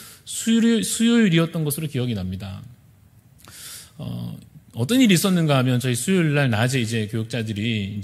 수요일이었던 것으로 기억이 납니다. 어떤 일이 있었는가 하면 저희 수요일 날 낮에 이제 교육자들이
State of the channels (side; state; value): both; identical; correlation 1.00